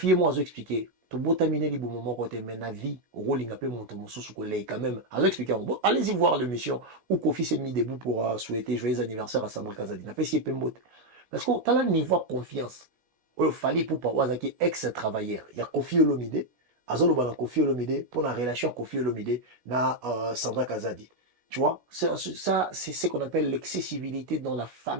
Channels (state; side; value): late; left; 16 ms